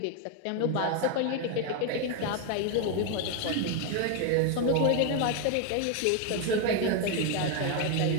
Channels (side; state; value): both; different; correlation 0.01